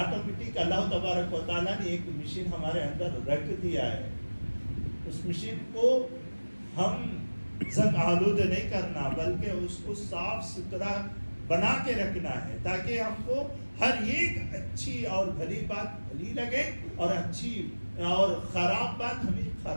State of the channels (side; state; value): both; inverted; correlation -1.00